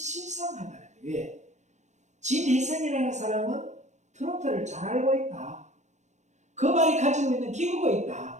거예요. 왜? 진혜성이라는 사람은 트로트를 잘 알고 있다. 그 말이 가지고 있는 기교가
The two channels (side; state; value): left; late; 0.34 ms